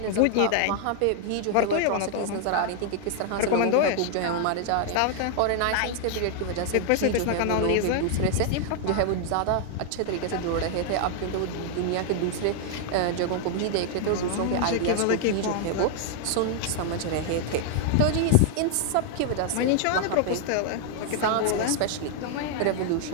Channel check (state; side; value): different; both; correlation 0.00